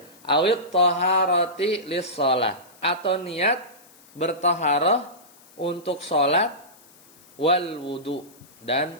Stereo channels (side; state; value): left; noise; hiss, 26 dB below the sound